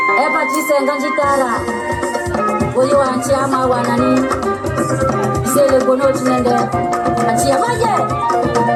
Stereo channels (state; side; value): identical; both; correlation 1.00